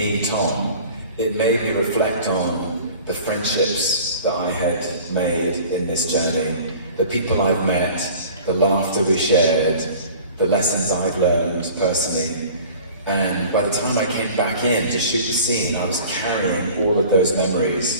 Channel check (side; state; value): both; inverted; correlation -0.44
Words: Tom, it made me reflect on the friendships that I had made in this journey, the people I've met, the laughter we shared, the lessons I've learned personally. And by the time I came back in to shoot the scene, I was carrying all of those